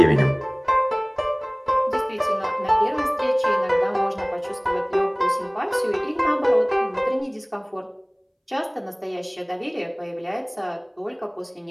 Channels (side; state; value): both; identical; correlation 1.00